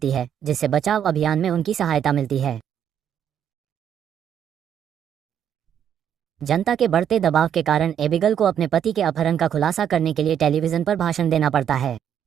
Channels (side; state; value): left; quieter; 9.1 dB